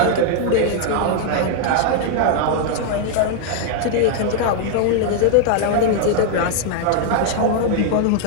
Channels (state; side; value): different; both; correlation 0.00